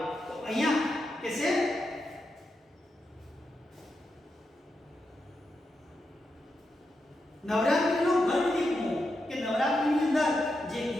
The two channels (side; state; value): both; normal; correlation 0.86